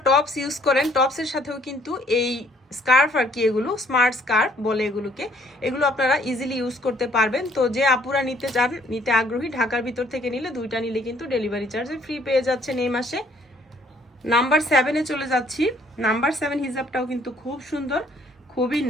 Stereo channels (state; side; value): normal; both; correlation 0.63